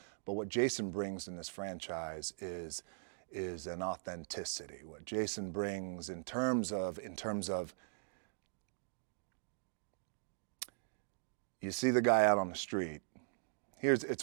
But what Jason brings in this franchise is an authenticity. What Jason brings in terms of you see the guy out on the street.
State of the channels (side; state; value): left; silent; digital silence